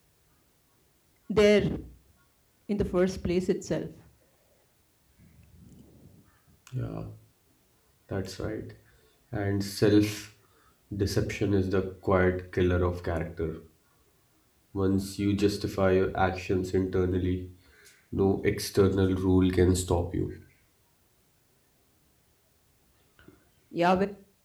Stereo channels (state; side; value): identical; both; correlation 1.00